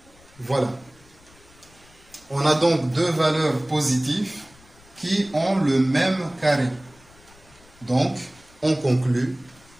Voilà. On a donc deux valeurs positives qui ont le même carré. Donc, on conclut,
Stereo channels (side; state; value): left; noise; rumble, 27 dB below the sound